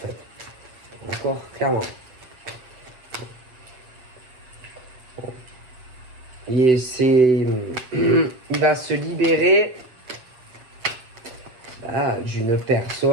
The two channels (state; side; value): late; left; 7.9 ms